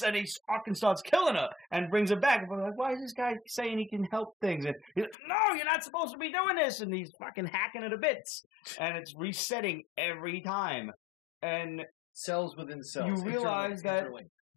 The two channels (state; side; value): drops out; right; at 5.2 s